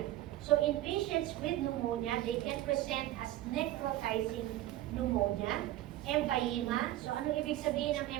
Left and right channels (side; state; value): left; quieter; 14.6 dB